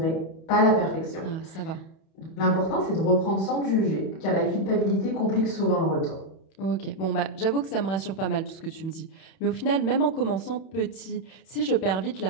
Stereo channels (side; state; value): right; late; 31 ms